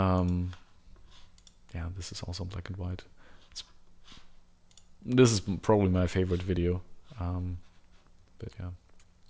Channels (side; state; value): both; identical; correlation 1.00